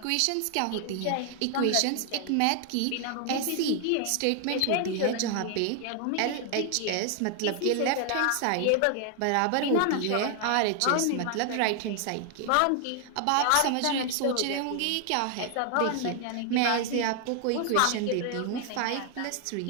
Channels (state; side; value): different; both; correlation 0.00